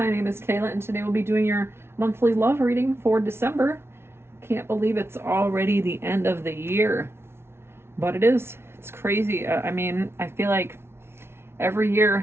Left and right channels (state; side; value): late; left; 0.12 ms